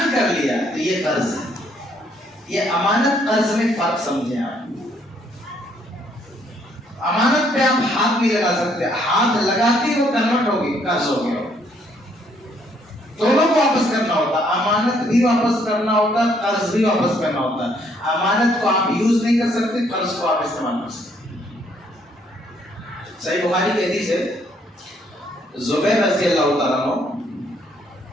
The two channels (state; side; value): normal; both; correlation 0.68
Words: कर लिया, तो ये कर्ज है। ये अमानत कर्ज में फर्क समझे आप। अमानत पे आप हाथ नहीं लगा सकते, हाथ लगाते वो कन्वर्ट होगी, कर्ज हो गया। दोनों को वापस करना होता, अमानत भी वापस करना होता, कर्ज भी वापस करना होता। अमानत को आप यूज नहीं कर सकते, कर्ज को आप इस्तेमाल कर सकते। सही बुखारी की हदीस है, जुबैर रज़ी अल्लाह तआला अन्हु